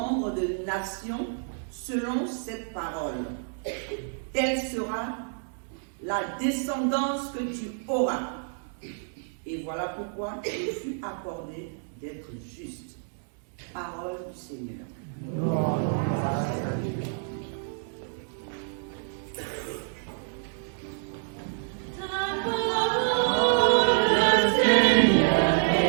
de nations selon cette parole. Telle sera la descendance que tu auras. Et voilà pourquoi il fut accordé d'être juste. Parole du Seigneur.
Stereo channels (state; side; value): silent; left; digital silence